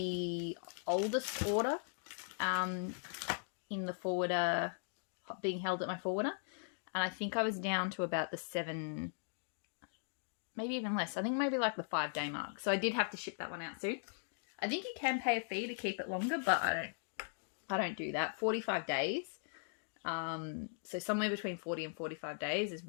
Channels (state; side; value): silent; right; digital silence